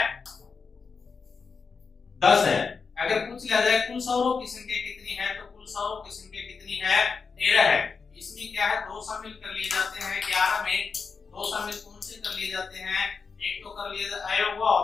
10 है। अगर पूछ लिया जाए कुल स्वरों की संख्या कितनी है, तो कुल स्वरों की संख्या कितनी है, 13 है। इसमें क्या है, 2 शामिल कर लिए जाते हैं 11 में। 2 शामिल कौन से कर लिए जाते हैं, एक तो कर लिए आए हुआ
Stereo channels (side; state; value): right; quieter; 5.2 dB